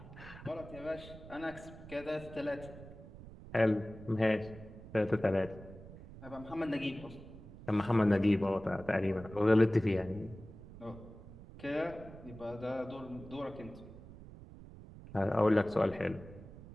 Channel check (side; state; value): right; noise; rumble, 16 dB below the sound